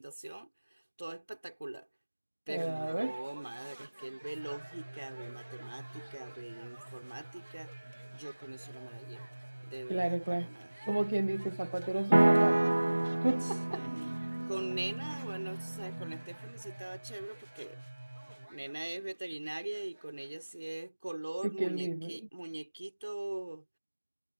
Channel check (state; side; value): inverted; both; correlation -1.00